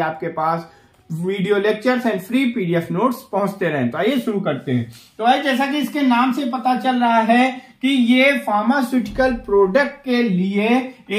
आपके पास video lectures and free PDF notes पहुंचते रहें। तो आइए शुरू करते हैं। तो भाई, जैसा कि इसके नाम से पता चल रहा है कि ये फार्मास्यूटिकल प्रोडक्ट के लिए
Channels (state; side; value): identical; both; correlation 1.00